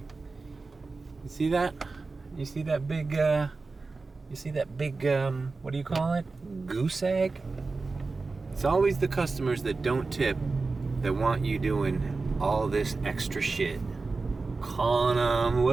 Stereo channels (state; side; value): quieter; left; 3.9 dB